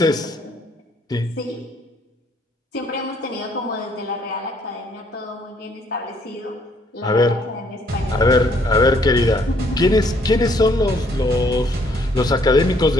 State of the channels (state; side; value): normal; both; correlation 0.66